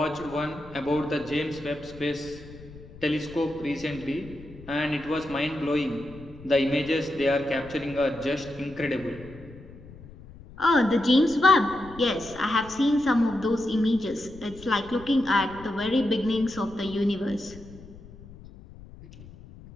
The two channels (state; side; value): noise; left; rumble, 18 dB below the sound